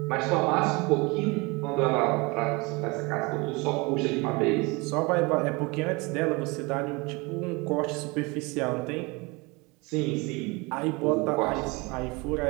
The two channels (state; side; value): quieter; left; 26.3 dB